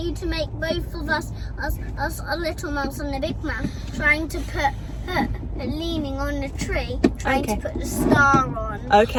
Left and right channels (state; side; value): identical; both; correlation 1.00